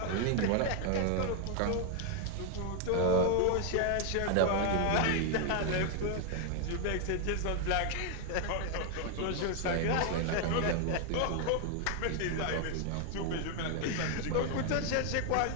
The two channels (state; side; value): different; both; correlation 0.01